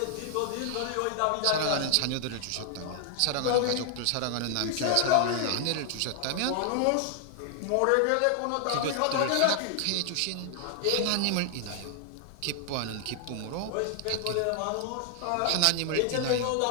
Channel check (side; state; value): both; different; correlation 0.00